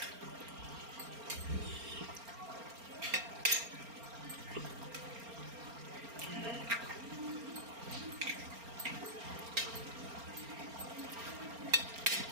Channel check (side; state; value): left; late; 4.3 ms